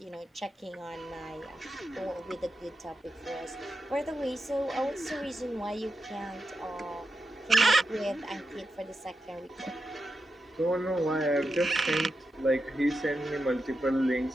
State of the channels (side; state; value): both; normal; correlation 0.88